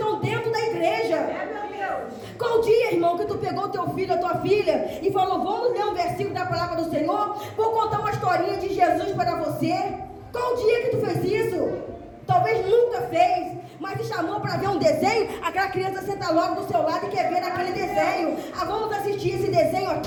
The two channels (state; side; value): identical; both; correlation 1.00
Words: dentro da igreja. Qual dia, irmão, que tu pegou teu filho, a tua filha, e falou, vamos ler um versículo da palavra do Senhor? Vou contar uma historinha de Jesus para você. Qual dia que tu fez isso? Talvez nunca fez, mas te chamou para ver um desenho, aquela criança senta logo do seu lado e quer ver aquele desenho. Ah, vamos assistir esse desenho